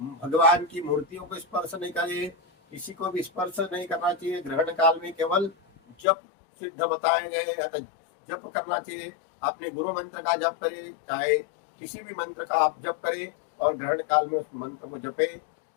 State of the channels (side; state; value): right; drops out; at 6.0 s